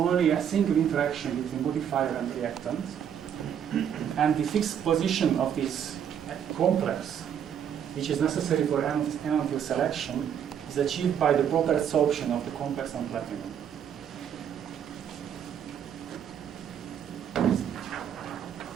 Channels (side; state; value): left; quieter; 8.8 dB